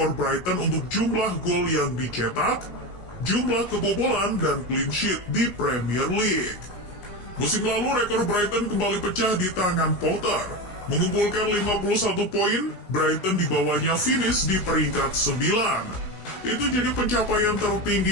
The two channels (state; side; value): late; right; 16 ms